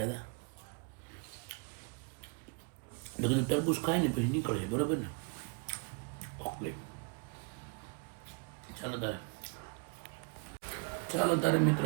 હતા એટલે કીધું તરબૂચ ખાઈને પછી નીકળીએ, બરાબર ને? ઓકે, ચાલો તારે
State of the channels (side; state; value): left; quieter; 33.4 dB